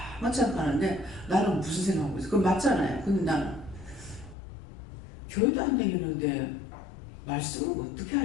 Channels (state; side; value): drops out; right; at 4.4 s